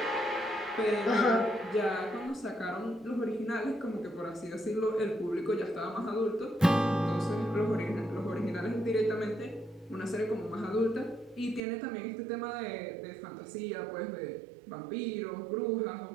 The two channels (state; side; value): drops out; left; at 11.6 s